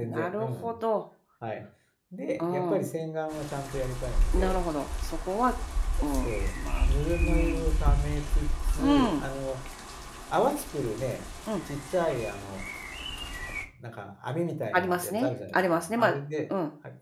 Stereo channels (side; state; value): both; identical; correlation 1.00